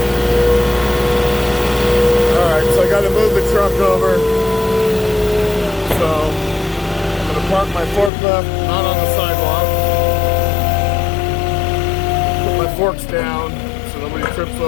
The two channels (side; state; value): right; drops out; at 8.1 s